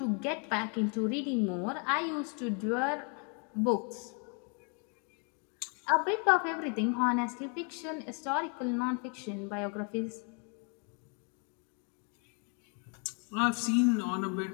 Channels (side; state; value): right; quieter; 38.3 dB